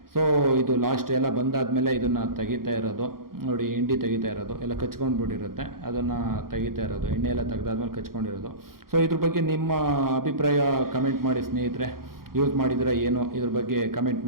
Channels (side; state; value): left; late; 0.92 ms